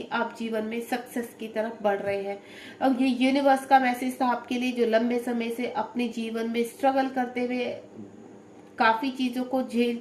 आप जीवन में सक्सेस की तरफ बढ़ रहे हैं। अब ये यूनिवर्स का मैसेज था आपके लिए, जो लंबे समय से अपने जीवन में स्ट्रगल करते हुए काफी चीजों को झेल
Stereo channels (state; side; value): identical; both; correlation 1.00